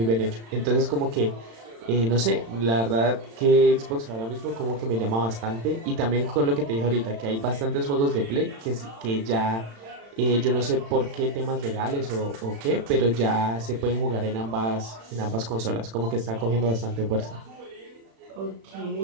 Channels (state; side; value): late; left; 35 ms